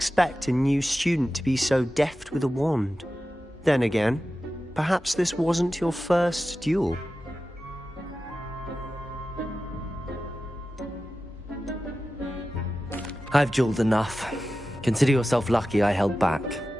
a new student to be so deft with a wand. Then again, perhaps this wasn't your first duel. I've dueled enough. Consider yourself lucky I held back.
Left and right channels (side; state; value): both; normal; correlation 0.93